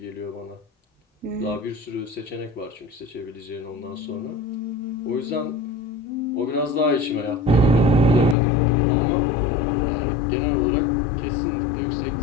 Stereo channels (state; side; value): drops out; right; at 8.3 s